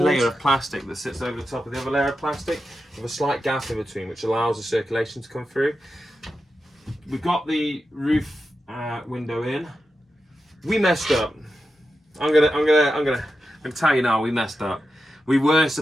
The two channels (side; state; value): both; normal; correlation 0.90